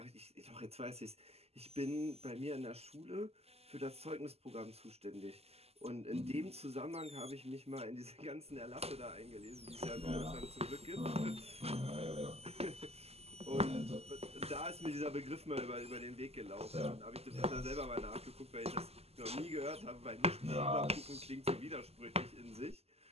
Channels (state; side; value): late; left; 0.29 ms